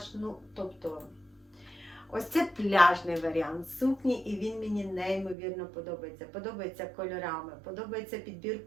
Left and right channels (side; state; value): left; drops out; at 5.4 s